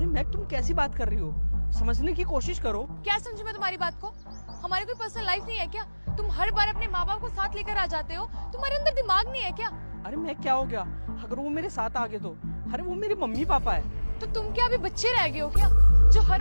मैक तुम कैसी बात कर रही हो, समझने की कोशिश करो। क्या समझू मैं तुम्हारी बात को? हमारी कोई पर्सनल लाइफ नहीं है क्या? तुम हर बार अपने माँ बाप को साथ लेकर आ जाते हो, तुम्हारे अंदर दिमाग नहीं है क्या? अरे मैं क्या हो गया अगर वो मेरे साथ आ गए तो? अरे वो मेरे मम्मी पापा है। तो तुम क्या अभी बच्चे रह गए हो क्या, जो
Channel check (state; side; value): inverted; both; correlation -1.00